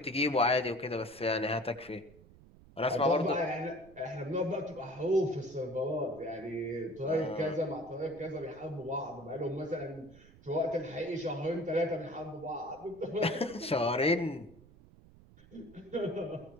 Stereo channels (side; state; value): right; noise; rumble, 23 dB below the sound